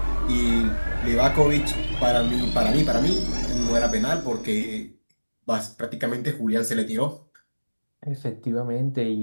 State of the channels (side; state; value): both; inverted; correlation -1.00